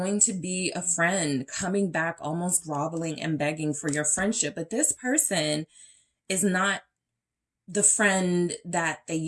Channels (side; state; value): both; identical; correlation 1.00